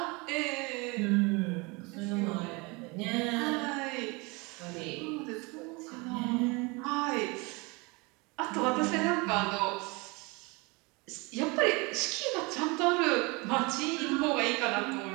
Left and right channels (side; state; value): left; quieter; 27.2 dB